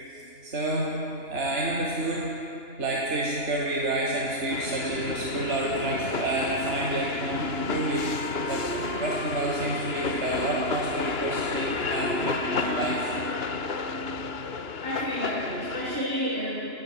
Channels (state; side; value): late; left; 2.9 ms